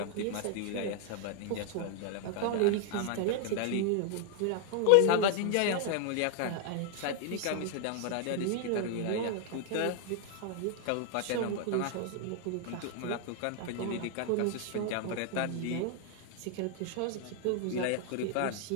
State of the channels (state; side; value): different; both; correlation 0.00